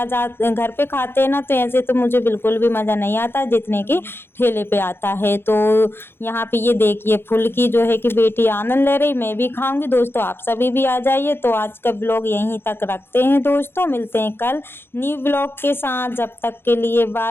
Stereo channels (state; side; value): late; right; 0.11 ms